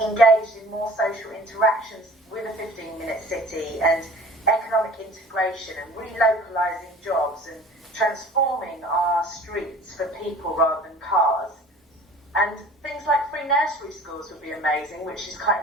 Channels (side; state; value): both; normal; correlation 0.46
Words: in more social interactions with a 15-minute city and economic integration and relocalising jobs and transforming our streets for people rather than cars? And things like free nursery schools would be amazing, which